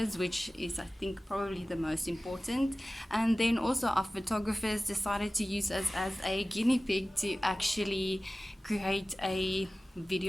which is, I think, probably the most important. And then also our photographers decided to use us as a guinea pig to actually create a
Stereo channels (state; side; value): normal; both; correlation 0.96